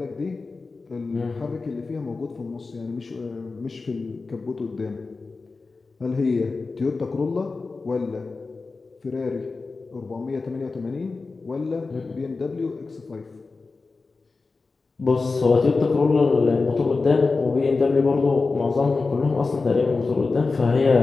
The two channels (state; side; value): quieter; right; 4.0 dB